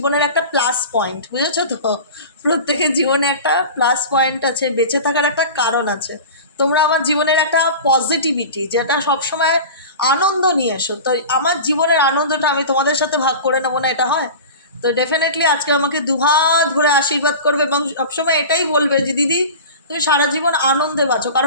একটা প্লাস পয়েন্ট, বুঝেছো তো? প্রত্যেকের জীবনে একটা প্লাস পয়েন্ট আছে, বেঁচে থাকার একটা কারণ আছে। তোমরা আমার জীবনের একটা পজিটিভিটি, যেটা সবসময় আনন্দ নিয়ে এসো। তো আমার জীবনের আনন্দটা আমি তোমাদের সাথে ভাগ করে নেবো না, এটা হয়? তো ডেফিনেটলি আজকে আমাকে দুহাত ভরে আশীর্বাদ করবে এবং সবসময় এটাই বলবে যে দিদি, তুমি সারা জীবন আনন্দে বাঁচো,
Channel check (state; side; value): inverted; both; correlation -0.34